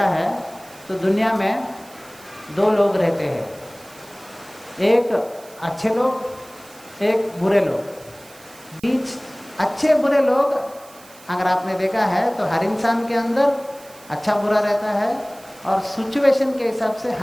है तो दुनिया में दो लोग रहते हैं, एक अच्छे लोग, एक बुरे लोग। बीच अच्छे बुरे लोग अगर आपने देखा है तो हर इंसान के अंदर अच्छा बुरा रहता है, और सिचुएशन के हिसाब से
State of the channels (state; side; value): noise; right; hiss, 22 dB below the sound